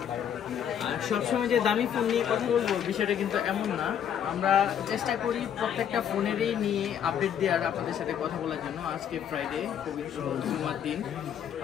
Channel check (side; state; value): right; quieter; 9.0 dB